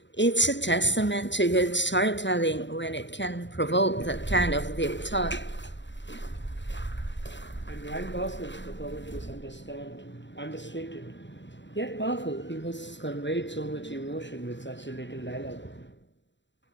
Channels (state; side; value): late; right; 0.53 ms